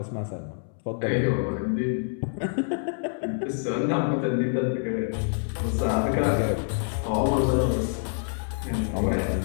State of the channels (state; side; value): silent; right; 60 dB below the other